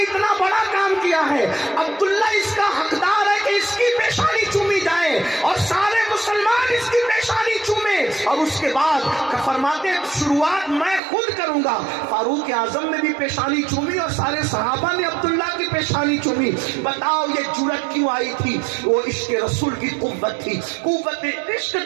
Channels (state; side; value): drops out; left; at 11.0 s